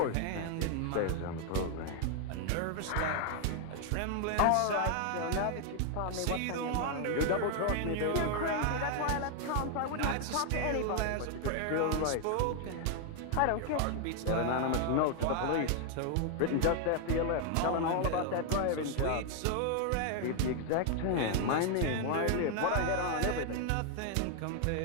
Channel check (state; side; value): different; both; correlation 0.00